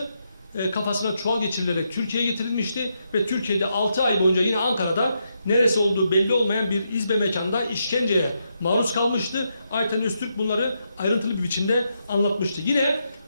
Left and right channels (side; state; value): both; inverted; correlation -0.81